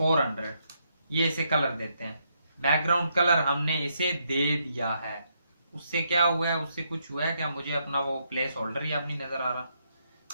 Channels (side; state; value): both; inverted; correlation -0.77